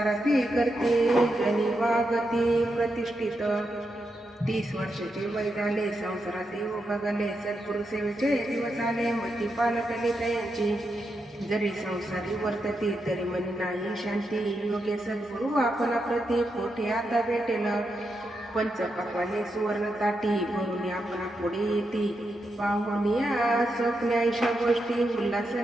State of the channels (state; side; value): normal; both; correlation 0.85